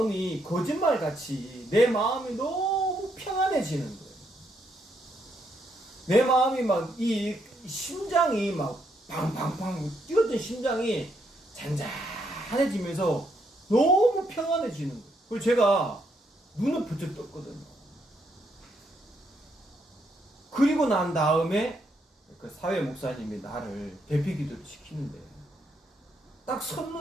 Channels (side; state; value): both; normal; correlation 0.76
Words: 거짓말같이 내 마음이 너무 평안해지는 거예요. 내 마음이 막 이 심장이 막 팡팡팡 뛰었던 심장이 잔잔해지면서 너무 평안해지는 거예요. 그리고 제가 눈을 부쩍 떴거든요. 그리고 난 다음에 그 사회 목사님이 나를 대피 기도를 시키는데 딱